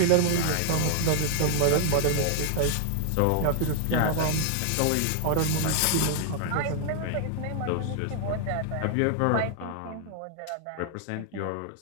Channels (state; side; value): different; both; correlation 0.00